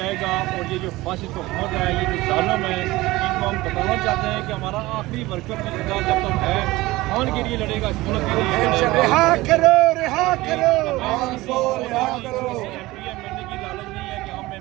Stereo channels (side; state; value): left; quieter; 19.3 dB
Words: گا. اور یہ جو فاشسٹ حکومت ہے, یہ جو ظالم ہے, ان کو ہم بتانا چاہتے ہیں کہ ہمارا آخری ورکر بھی زندہ جب تک ہے خان کے لیے لڑے گا, اس ملک کے لیے رہا کرو رہا کرو. بننے کی لالچ نہیں ہے کہ ہم